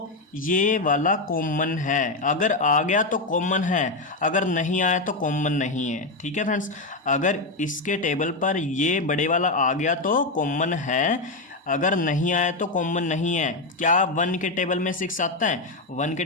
ये वाला कॉमन है। अगर आ गया तो कॉमन है, अगर नहीं आया तो कॉमन नहीं है, ठीक है फ्रेंड्स। अगर इसके टेबल पर ये बड़े वाला आ गया तो कॉमन है, अगर नहीं आया तो कॉमन नहीं है। क्या 1 के टेबल में 6 आता है? 1 के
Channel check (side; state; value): right; quieter; 3.1 dB